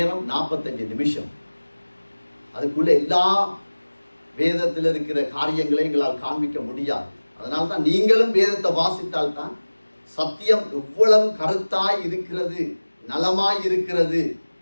45 நிமிஷம். அதுக்குள்ள எல்லா வேதத்தில் இருக்கிற காரியங்களை எங்களால் காண்பிக்க முடியாது. அதனால தான் நீங்களும் வேதத்தை வாசித்தால் தான் சத்தியம் எவ்வளவு கருத்தாய் இருக்கிறது, நலமாய் இருக்கிறது,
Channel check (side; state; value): both; inverted; correlation -1.00